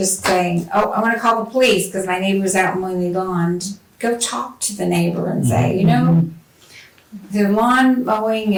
saying, oh, I'm gonna call the police because my neighbor's out mowing the lawn, go talk to the neighbor and say, the lawn mowing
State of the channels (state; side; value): identical; both; correlation 1.00